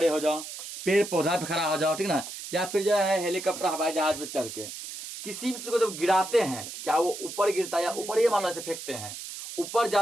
हो जाओ, पेड़ पौधा पे खड़ा हो जाओ, ठीक ना, या फिर जो है हेलीकॉप्टर हवाई जहाज पे चढ़ के किसी भी चीज को जब गिराते हैं तो क्या वो ऊपर गिरता है या ऊपर ही मान लो ऐसे फेंकते हैं, ऊपर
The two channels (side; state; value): right; noise; hiss, 10 dB below the sound